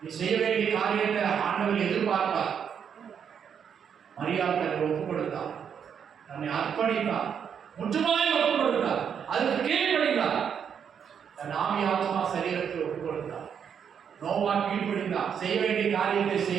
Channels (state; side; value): quieter; left; 7.6 dB